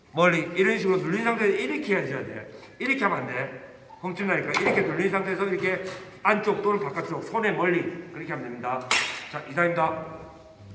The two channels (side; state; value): both; identical; correlation 1.00